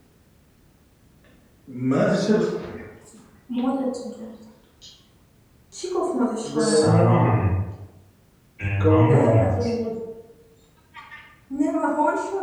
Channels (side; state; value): both; identical; correlation 1.00